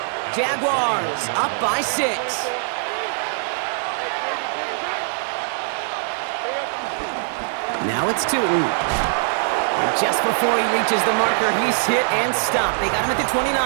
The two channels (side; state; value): left; silent; digital silence